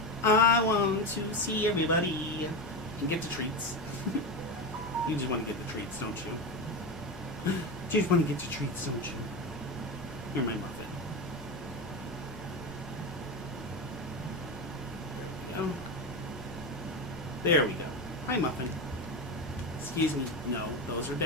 I want to see everybody and get the treats. You just want to get the treats, don't you? You just want to get the treats, don't you? You're my Muffin. Oh. There we go. Hi, Muffin. Excuse me. No, those are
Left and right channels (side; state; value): both; normal; correlation 0.17